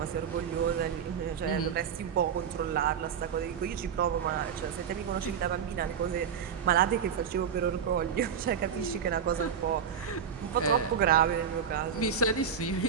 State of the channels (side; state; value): left; quieter; 7.4 dB